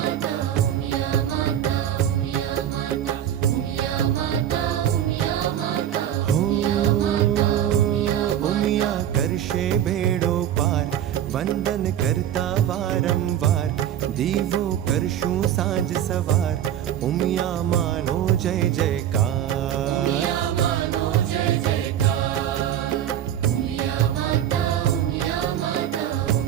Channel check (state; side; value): quieter; left; 10.7 dB